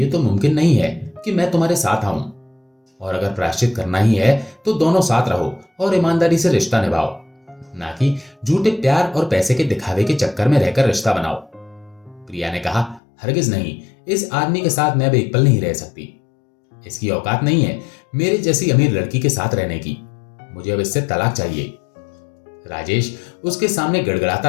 तो मुमकिन नहीं है कि मैं तुम्हारे साथ आऊं, और अगर प्रायश्चित करना ही है तो दोनों साथ रहो और ईमानदारी से रिश्ता निभाओ, ना कि झूठे प्यार और पैसे के दिखावे के चक्कर में रहकर रिश्ता बनाओ। प्रिया ने कहा, हरगिज नहीं, इस आदमी के साथ मैं अब एक पल नहीं रह सकती। इसकी औकात नहीं है मेरे जैसी अमीर लड़की के साथ रहने की। मुझे अब इससे तलाक चाहिए। राजेश उसके सामने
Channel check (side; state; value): right; drops out; at 13.0 s